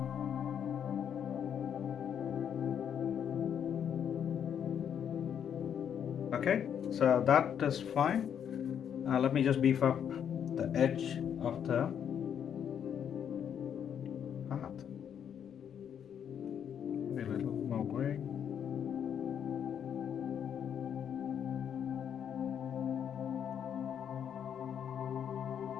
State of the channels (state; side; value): quieter; right; 8.5 dB